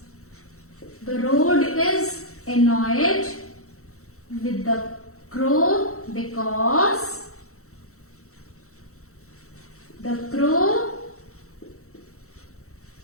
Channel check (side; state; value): right; late; 0.64 ms